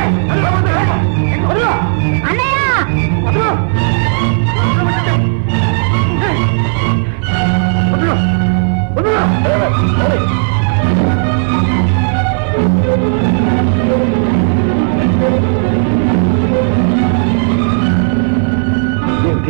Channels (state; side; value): silent; left; digital silence